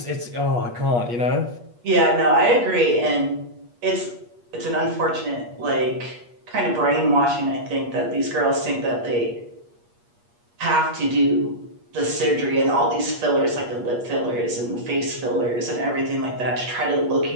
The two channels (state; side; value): late; left; 8.4 ms